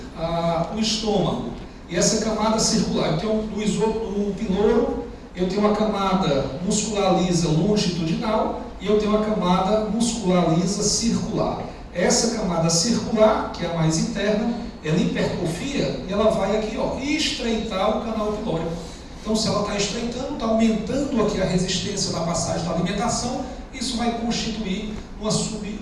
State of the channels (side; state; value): both; identical; correlation 1.00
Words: o estômago e essa camada circular, eu tenho no piloro, eu tenho uma camada muscular lisa longitudinal e eu tenho uma camada muscular lisa circular. Essa camada circular, que é a mais interna, ela hipertrofia e ela vai aqui, ó, estreitar o canal pilórico. Então, se ela está estreitando, está aumentando aqui a resistência da passagem da alimentação, isso vai constituir uma